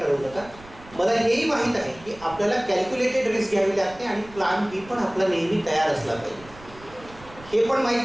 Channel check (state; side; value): noise; right; rumble, 21 dB below the sound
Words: नका. मला हेही माहीत आहे की आपल्याला कॅल्क्युलेटेड रिस्क घ्यावी लागते आणि प्लॅन बी पण आपला नेहमी तयार असला पाहिजे. हे पण